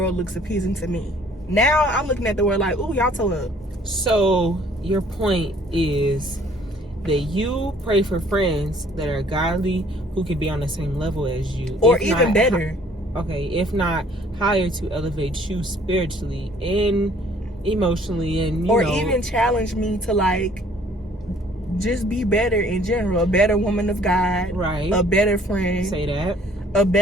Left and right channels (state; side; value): normal; both; correlation 0.58